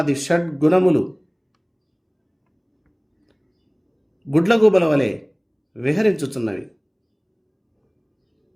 షడ్గుణములు గుడ్లగూబల వలె విహరించుచున్నవి.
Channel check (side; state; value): both; identical; correlation 1.00